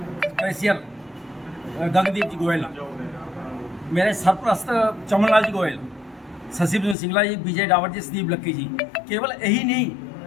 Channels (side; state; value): right; drops out; at 7.0 s